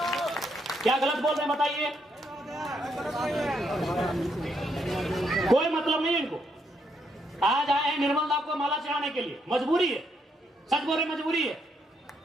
क्या गलत बोल रहे हैं बताइए? कोई मतलब नहीं है इनको। आज आए हैं निर्मल दा को माला चढ़ाने के लिए, मजबूरी है। सच बोल रहे, मजबूरी है।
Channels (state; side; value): normal; both; correlation 0.76